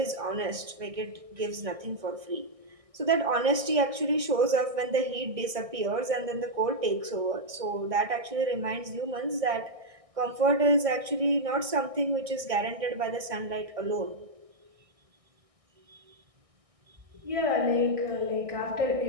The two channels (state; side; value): late; left; 1.6 ms